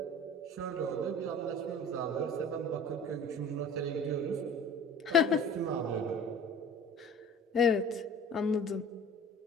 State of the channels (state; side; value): normal; both; correlation 0.43